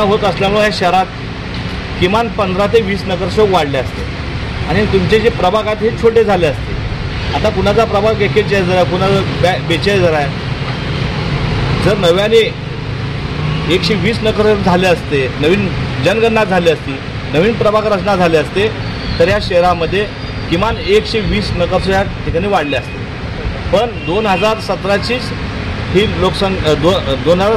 होत असल्यामुळे ह्या शहरात किमान 15 ते 20 नगरसेवक वाढले असते आणि तुमचे जे प्रभाग आहेत हे छोटे झाले असते. आता कुणाचा प्रभाग 41 आहे, कुणाचा 42 आहे. जर नव्याने 120 नगर झाले असते, नवीन जनगणना झाली असती, नवीन प्रभाग रचना झाले असते तर या शहरामध्ये किमान 120 नगरसेवक या ठिकाणी वाढले असते. पण 2017चीच ही लोकसंख्या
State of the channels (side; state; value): both; identical; correlation 1.00